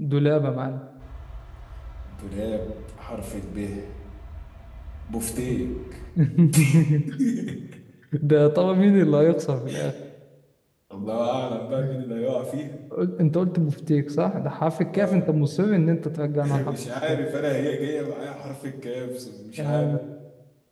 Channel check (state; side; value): identical; both; correlation 1.00